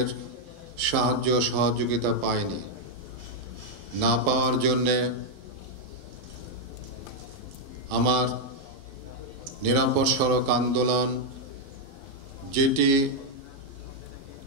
সাহায্য সহযোগিতা পাইনি। না পাওয়ার জন্যে আমার নিরাপদ সড়ক আন্দোলন, যেটি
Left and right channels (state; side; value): late; left; 12 ms